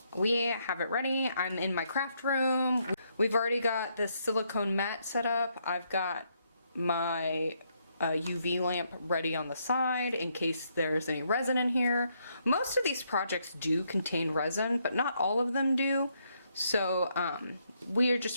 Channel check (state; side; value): inverted; both; correlation -0.75